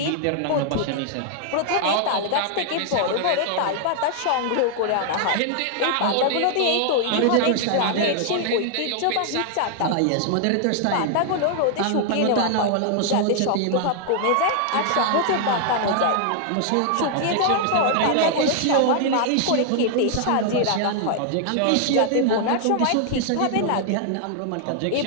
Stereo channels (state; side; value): different; both; correlation 0.00